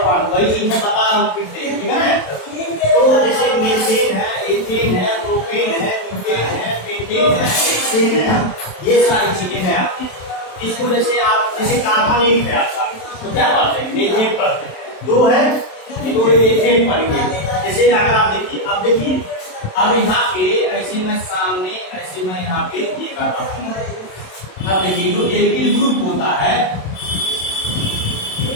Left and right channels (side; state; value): right; late; 27 ms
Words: वन वही चीज मैं बता रहा हूँ फिर से। ठीक है ना, तो जैसे मीथेन है, एथेन है, प्रोपेन है, ब्यूटेन है, पेंटेन है, हेक्सेन है, ये सारी चीजें हैं आपकी। इसको जैसे आप जैसे कार्बन एक है आपका, तो क्या पढ़ते हैं, मीथेन पढ़ते हैं। 2 है तो एथेन पढ़ेंगे। जैसे अगर आप देखिए, अब देखिए, अब यहाँ पे ऐसे मैं सामने ऐसे मैं यहाँ पे ये कर रहा हूँ। अब देखिए, जो एल्किल ग्रुप होता है